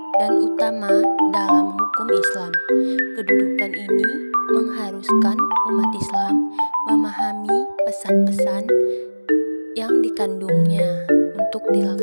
dan utama dalam hukum Islam. Kedudukan ini mengharuskan umat Islam memahami pesan-pesan yang dikandungnya untuk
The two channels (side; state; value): both; inverted; correlation -1.00